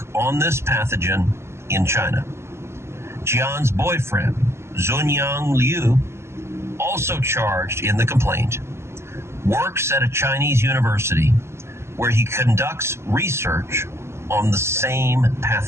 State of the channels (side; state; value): left; late; 0.13 ms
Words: on this pathogen in China. Jian's boyfriend, Zunyang Liu, also charged in the complaint, works at a Chinese university where he conducts research on the same